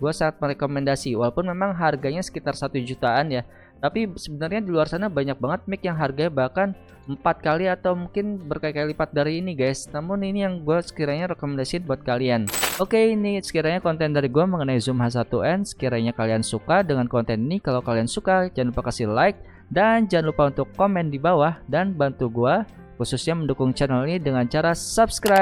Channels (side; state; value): both; identical; correlation 1.00